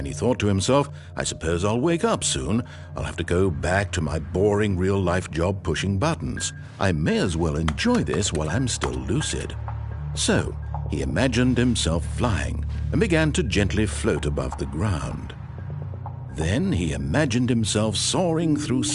he thought to himself, I suppose I'll wake up soon. I'll have to go back to my boring real-life job pushing buttons. I may as well enjoy this while I'm still lucid. So he imagined himself flying and began to gently float above the ground. Then he imagined himself soaring through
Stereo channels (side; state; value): both; identical; correlation 1.00